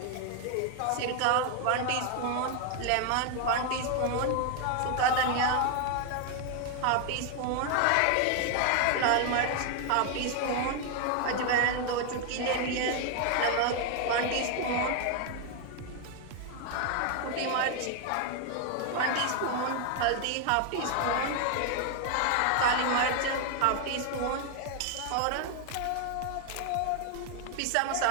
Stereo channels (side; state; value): both; different; correlation 0.01